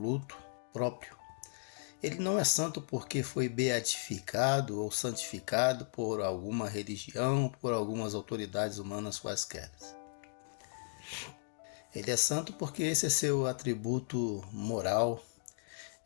próprio. Ele não é santo porque foi beatificado ou santificado por alguma religião, por algumas autoridades humanas quaisquer. Ele é santo porque esse é seu atributo moral,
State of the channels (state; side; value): silent; right; digital silence